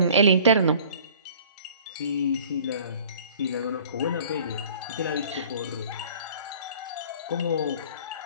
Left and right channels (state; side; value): inverted; both; correlation -0.48